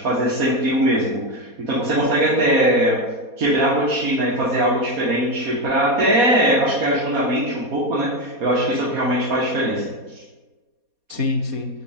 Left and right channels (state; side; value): late; left; 4.2 ms